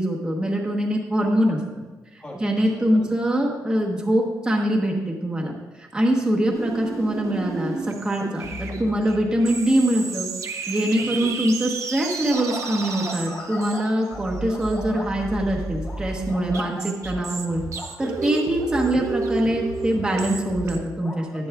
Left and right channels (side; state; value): both; normal; correlation 0.85